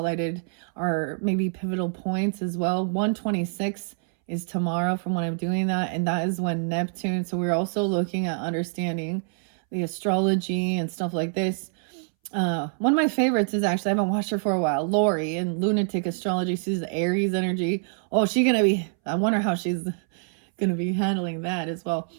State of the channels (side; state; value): left; silent; 61 dB below the other